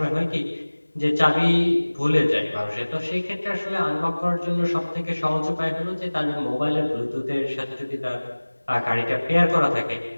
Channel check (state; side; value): inverted; both; correlation -1.00